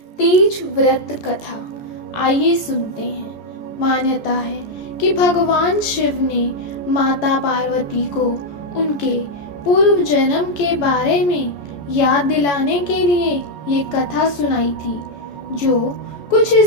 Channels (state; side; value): late; right; 14 ms